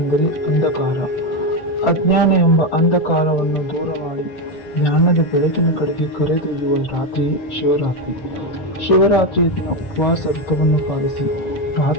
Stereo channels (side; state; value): right; late; 6.7 ms